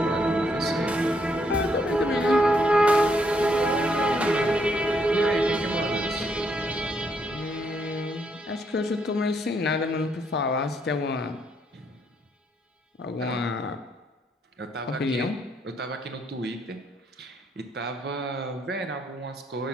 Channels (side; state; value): both; normal; correlation 0.73